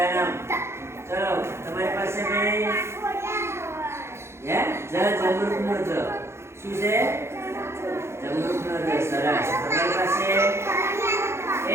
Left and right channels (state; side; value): late; left; 0.13 ms